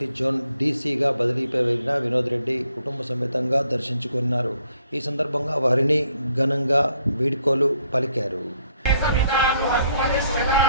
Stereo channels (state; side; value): inverted; both; correlation -0.70